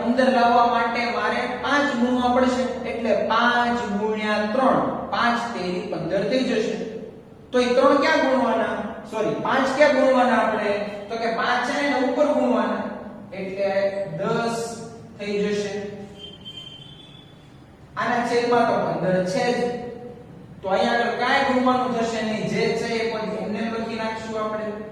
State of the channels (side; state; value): both; identical; correlation 1.00